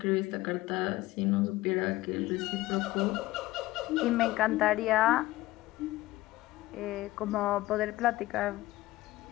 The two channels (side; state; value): right; quieter; 17.8 dB